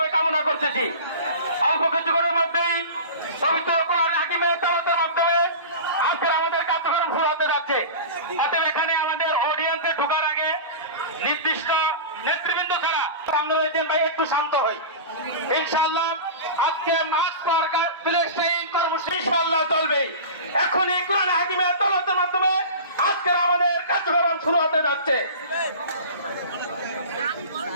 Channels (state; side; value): inverted; both; correlation -0.32